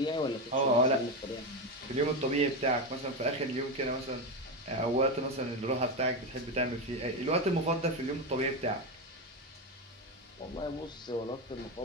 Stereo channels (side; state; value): both; normal; correlation 0.13